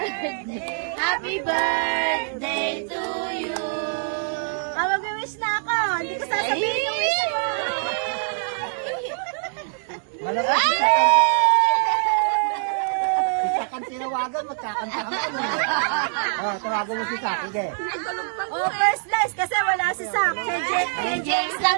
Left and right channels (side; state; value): left; silent; digital silence